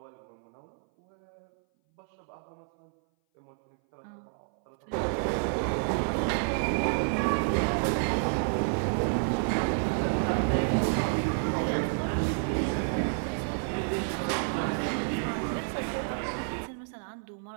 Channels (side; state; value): left; silent; 58 dB below the other